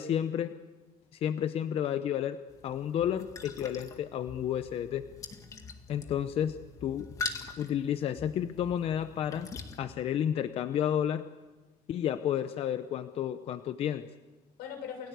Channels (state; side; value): quieter; right; 9.1 dB